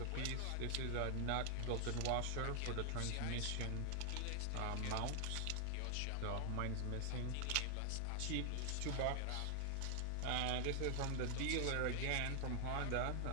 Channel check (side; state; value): both; different; correlation 0.00